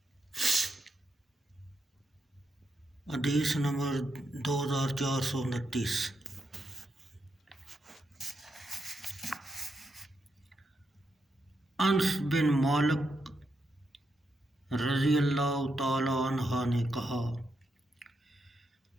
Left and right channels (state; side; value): normal; both; correlation 0.83